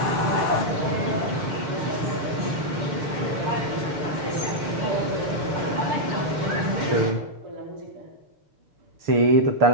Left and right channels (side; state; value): left; late; 6.6 ms